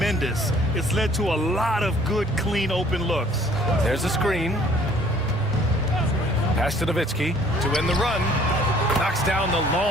It's led to a lot of good, clean, open looks. There's a screen. Pass to Nowitzki to win the run. Knocks down the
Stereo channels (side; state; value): both; normal; correlation 0.56